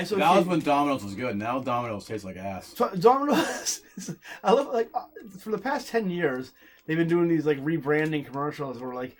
was when Domino's was good. Now Domino's tastes like ass. So Domino's, I love for the past 10 years they've been doing these rebranding commercials where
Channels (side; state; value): both; identical; correlation 1.00